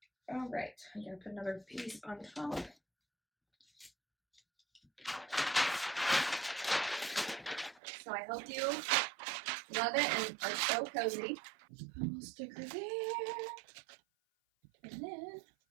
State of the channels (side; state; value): left; drops out; at 7.8 s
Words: All right, I'm gonna put another piece on top. So I hope you love it and are so cozy. Put a little sticker there, and then